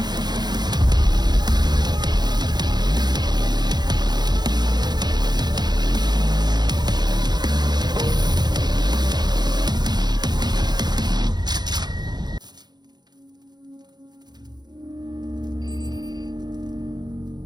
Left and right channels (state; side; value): late; left; 0.20 ms